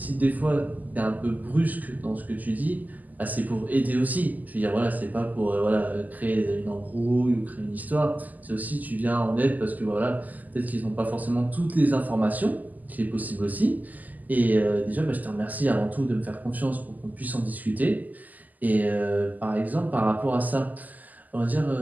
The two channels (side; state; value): left; late; 0.081 ms